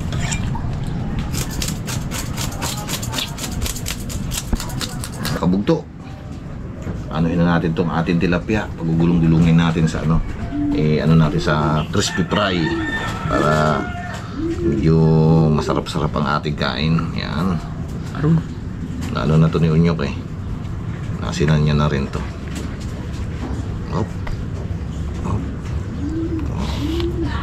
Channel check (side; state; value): both; identical; correlation 1.00